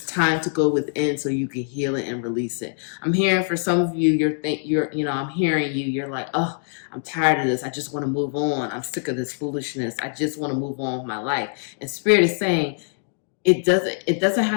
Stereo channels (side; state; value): right; silent; digital silence